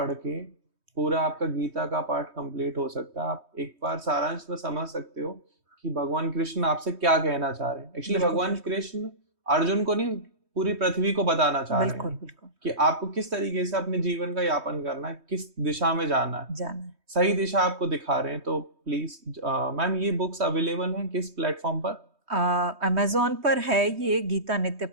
के पूरा आपका गीता का पाठ कंप्लीट हो सकता है। आप एक बार सारांश में समझ सकते हो कि भगवान कृष्ण आपसे क्या कहना चाह रहे हैं। एक्चुअली भगवान कृष्ण अर्जुन को नहीं, पूरी पृथ्वी को बताना चाह रहे हैं कि आपको किस तरीके से अपने जीवन का यापन करना है, किस दिशा में जाना है। सही दिशा आपको दिखा रहे हैं। तो प्लीज मैम, ये बुक्स अवेलेबल हैं किस प्लेटफॉर्म पर? अमेज़न पर है ये गीता नित्य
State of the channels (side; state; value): left; late; 3.2 ms